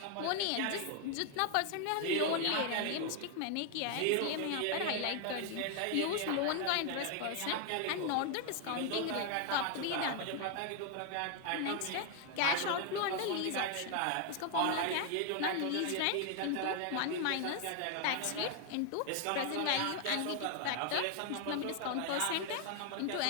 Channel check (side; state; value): both; different; correlation 0.00